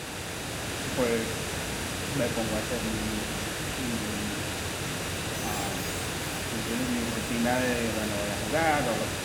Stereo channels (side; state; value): both; identical; correlation 1.00